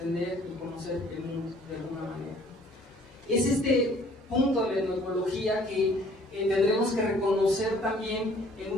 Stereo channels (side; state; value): both; normal; correlation 0.57